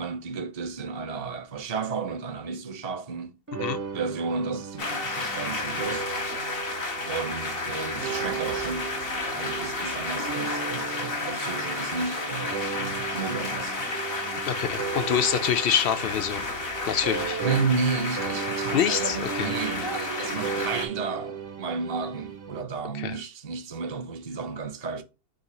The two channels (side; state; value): right; late; 2.7 ms